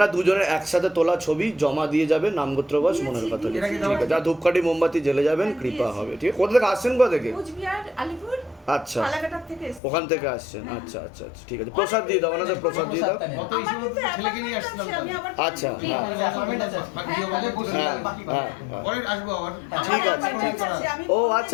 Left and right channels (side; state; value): right; drops out; at 9.8 s